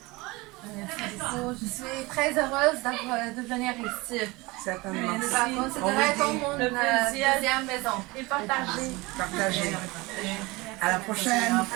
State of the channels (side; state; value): left; quieter; 23.0 dB